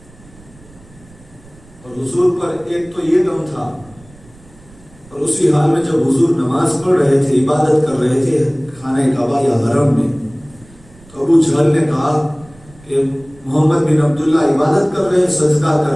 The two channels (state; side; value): noise; right; rumble, 25 dB below the sound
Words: اور حضور پر ایک تو یہ غم تھا، اور اسی حال میں جب حضور نماز پڑھ رہے تھے، عبادت کر رہے تھے خانہ کعبہ یا حرم میں، تو ابو جہل نے کہا کہ محمد بن عبداللہ عبادت کر رہے، سجدہ